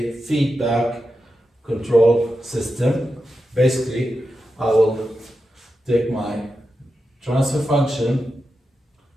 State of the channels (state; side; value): normal; both; correlation 0.89